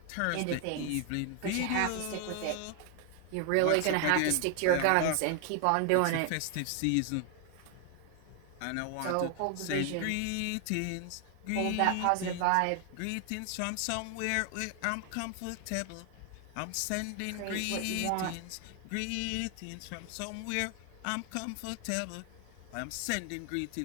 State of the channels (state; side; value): different; both; correlation 0.00